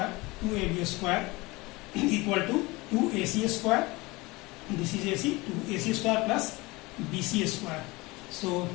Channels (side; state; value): right; quieter; 22.8 dB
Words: equal to 2AC square, this is AC, 2AC square plus BC square. So